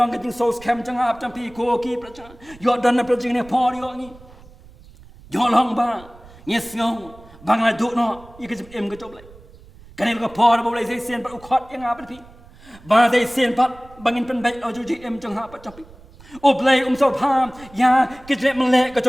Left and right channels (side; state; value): right; noise; rumble, 22 dB below the sound